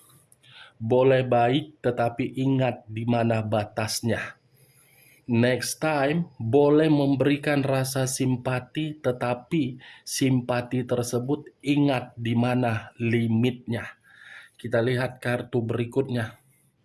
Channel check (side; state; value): both; identical; correlation 1.00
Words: boleh baik tetapi ingat di mana batasnya. Next time, boleh memberikan rasa simpati tetapi simpati tersebut ingat di mana limitnya. Kita lihat kartu berikutnya.